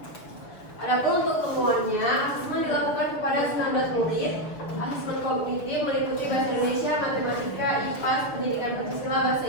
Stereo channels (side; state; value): right; late; 6.5 ms